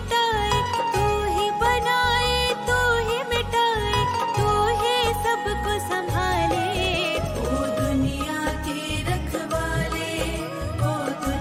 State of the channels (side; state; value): both; identical; correlation 1.00